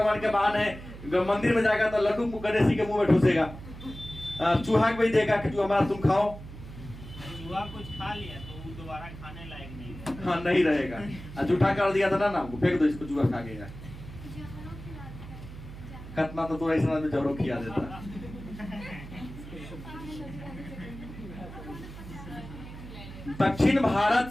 के बहाने है, मंदिर में जाएगा तो लड्डू गणेश जी के मुंह में ठूसेगा, चूहा को भी देगा कि हमारा तुम खाओ। चूहा कुछ खा लिया तो वो दोबारा खाने लायक नहीं है। हाँ, नहीं रहेगा। जूठा कर दिया था ना, फेंक दो इसको, चूहा खा गया। खतना तो ऐसा आदमी जरूर खिया देता। दक्षिण भारत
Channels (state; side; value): noise; right; hum, 13 dB below the sound